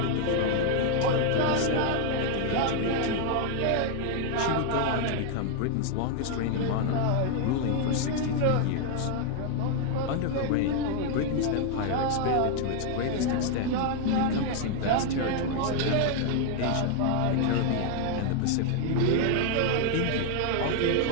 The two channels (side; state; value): both; different; correlation 0.00